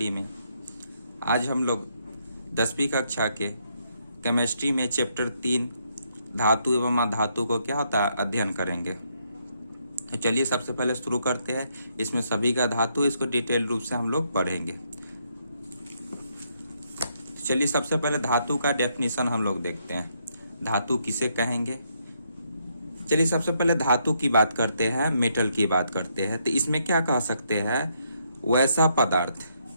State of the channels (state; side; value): inverted; both; correlation -0.75